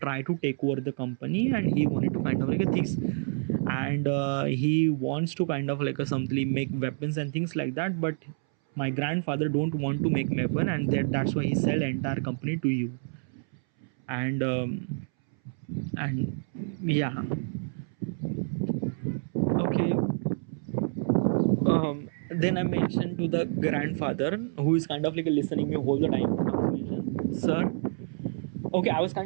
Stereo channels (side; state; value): left; silent; 59 dB below the other